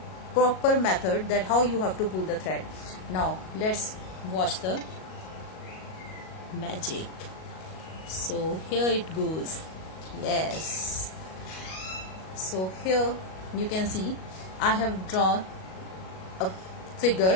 proper method that how you have to pull the thread. Now let's watch the magic. So here it goes. Yes. So here you can see I have drawn a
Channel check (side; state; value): right; late; 38 ms